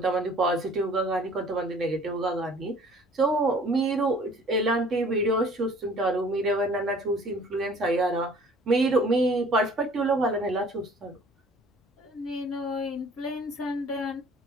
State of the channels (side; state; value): both; normal; correlation 0.52